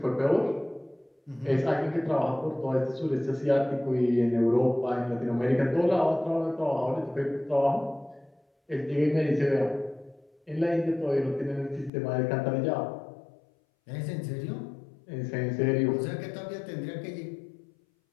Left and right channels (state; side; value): drops out; right; at 11.9 s